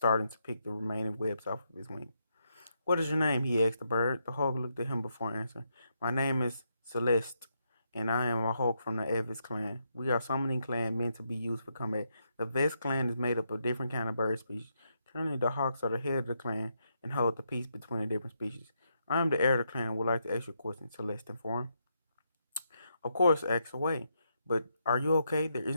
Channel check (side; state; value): both; inverted; correlation -0.80